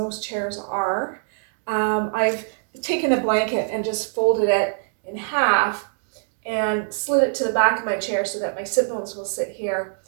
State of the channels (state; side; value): silent; left; digital silence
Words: chairs are, I've taken a blanket and just folded it in half and slid it to the back of my chair so that my sit bones will sit here,